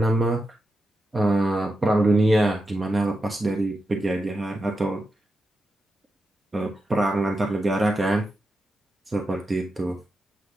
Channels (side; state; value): both; normal; correlation 0.88